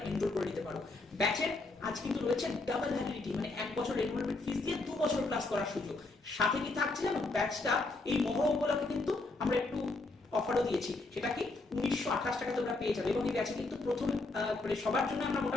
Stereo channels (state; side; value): quieter; right; 3.3 dB